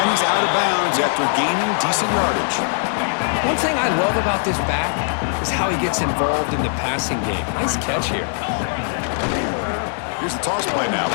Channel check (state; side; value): silent; right; digital silence